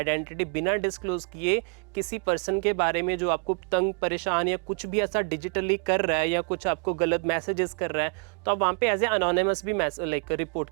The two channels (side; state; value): left; quieter; 39.9 dB